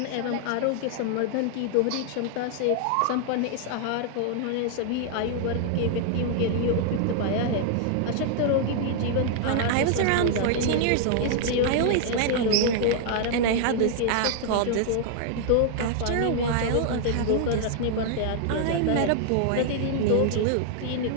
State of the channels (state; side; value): different; both; correlation -0.01